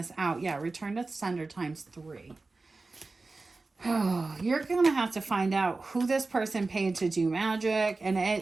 out. Yeah, return to sender ×3. Oh, you're going to have to find out who this person paid to do magic. And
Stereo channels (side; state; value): left; quieter; 3.6 dB